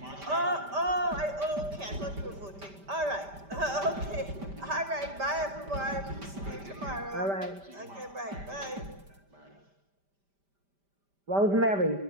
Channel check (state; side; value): late; left; 5.1 ms